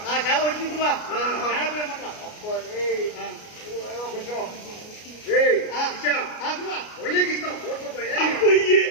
చాలా వచ్చింది గురువా. కొంచెం ఒళ్ళకి ఇస్తాం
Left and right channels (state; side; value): late; right; 33 ms